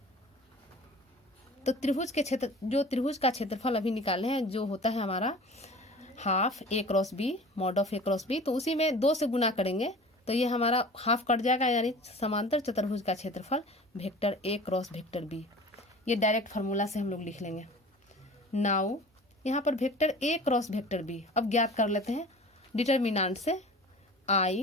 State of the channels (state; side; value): normal; both; correlation 0.41